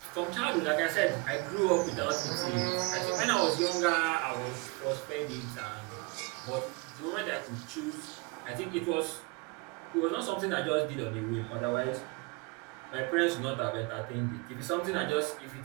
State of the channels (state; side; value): quieter; left; 27.5 dB